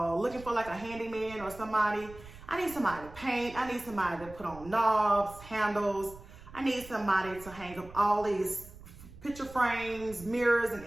Looking for like a handyman or somebody. I need somebody to paint. I need somebody to put on knobs, handles. I need somebody to hang up all these picture frames, mirrors, and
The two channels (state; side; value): noise; right; rumble, 18 dB below the sound